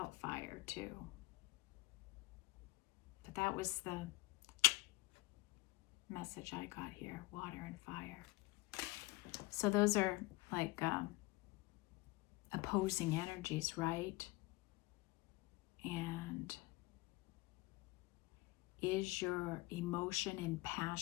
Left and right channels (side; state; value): right; quieter; 21.7 dB